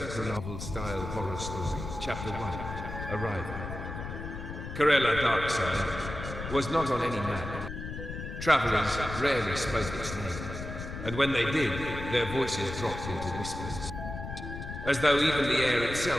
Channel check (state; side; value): noise; left; rumble, 8 dB below the sound